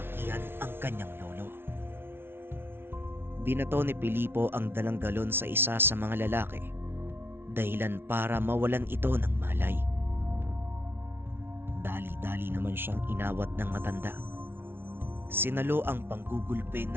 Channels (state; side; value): late; left; 0.11 ms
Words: ang kanyang lolo. Binato ni Filipo ang dalang galon sa isa sa mga lalaki dahilan para mawalan ito ng malay. Dali-dali naman siyang inawat ng matanda. Sinalo ang panggugulpe